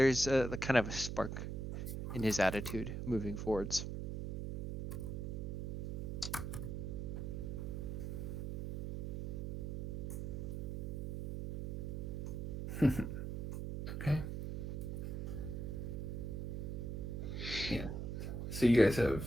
a kind of a spark in his attitude moving forwards. Okay. Yeah. So you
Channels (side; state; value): right; noise; hum, 3 dB below the sound